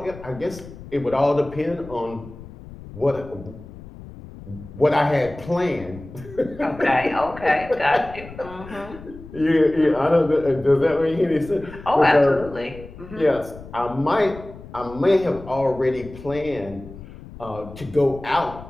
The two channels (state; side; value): noise; left; rumble, 16 dB below the sound